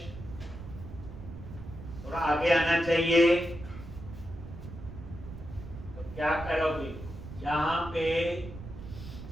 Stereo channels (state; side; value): noise; right; rumble, 12 dB below the sound